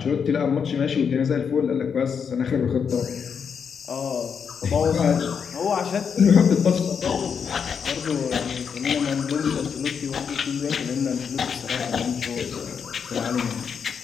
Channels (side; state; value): right; quieter; 6.7 dB